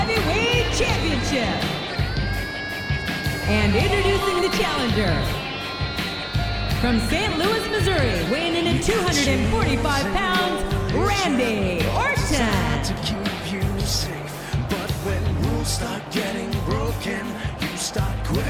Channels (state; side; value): identical; both; correlation 1.00